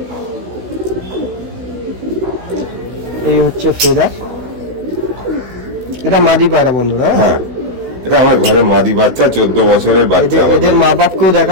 এই হচ্ছে ফেদার, এটা মাদি পায়রা বন্ধুরা। হ্যাঁ এটা আমার ঘরে মাদি বাচ্চা, 14 বছরের বাচ্চা আমার। এদের মা বাপকেও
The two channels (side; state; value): left; late; 16 ms